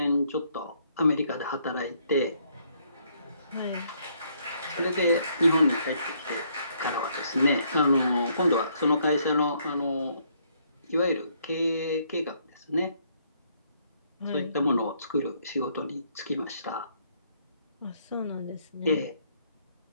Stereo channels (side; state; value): both; inverted; correlation -0.69